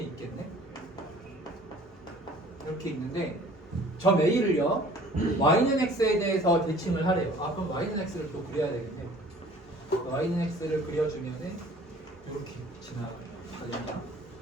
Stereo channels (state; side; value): normal; both; correlation 0.51